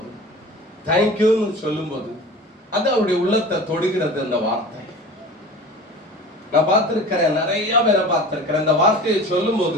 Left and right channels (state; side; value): normal; both; correlation 0.38